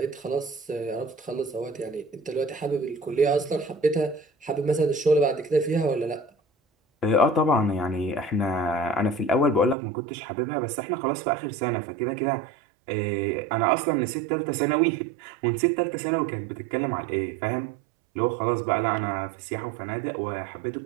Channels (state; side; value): drops out; left; at 9.8 s